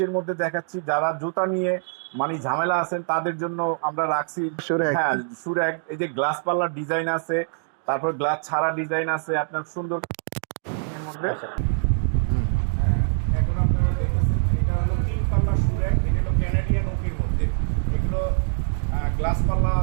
মধ্যে দেখাচ্ছি, যারা জুতা নিয়ে মানে ঝামেলা আছেন তাদের জন্য আমরা রাখছি। সুরেখ। হ্যাঁ, সুরেক, এই যে গ্লাস পাল্লার ডিজাইন আছে, তারপর গ্লাস ছাড়া ডিজাইন আছে আপনার সুন্দর এর মধ্যে। হুম। হ্যাঁ, এখন আপনারা দেখতেছেন এটা হলো 3 পাল্লা সুরেক, এটা হলো ক্যানাডিয়ান ওকের মধ্যে। এগুলো গ্লাস পাল্লা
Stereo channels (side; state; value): left; silent; digital silence